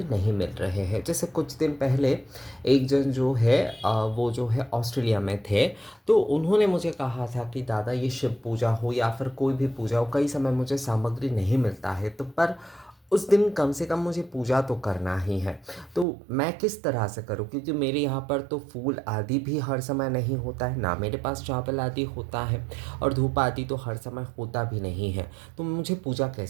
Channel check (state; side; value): drops out; left; at 16.1 s